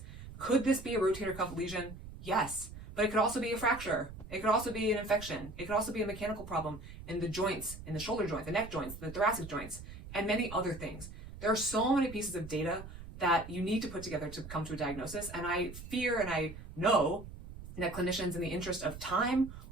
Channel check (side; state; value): right; noise; rumble, 13 dB below the sound